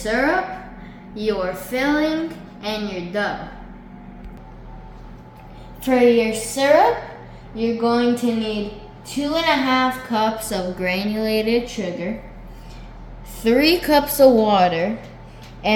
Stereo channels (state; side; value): identical; both; correlation 1.00